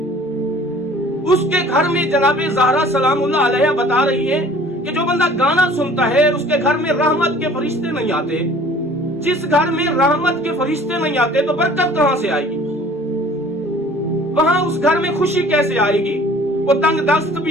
उसके घर में, जनाब ज़हरा सलामुल्लाह अलैहा बता रही है कि जो बंदा गाना सुनता है उसके घर में रहमत के फरिश्ते नहीं आते। जिस घर में रहमत के फरिश्ते नहीं आते तो बरकत कहां से आएगी? वहां उस घर में खुशी कैसे आएगी? वो तंग दस्त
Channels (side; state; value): both; normal; correlation 0.50